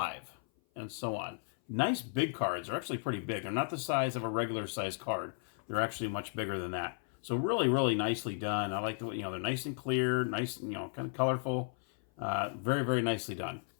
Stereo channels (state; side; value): silent; right; 55 dB below the other